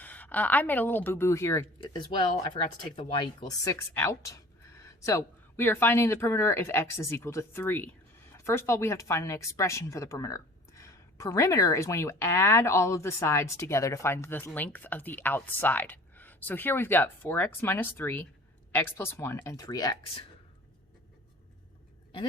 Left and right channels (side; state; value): both; normal; correlation 0.46